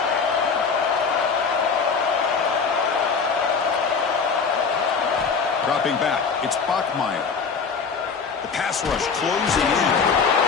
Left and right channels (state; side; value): quieter; right; 5.5 dB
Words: Dropping back, it's Bachmeier. The pass rush closing in.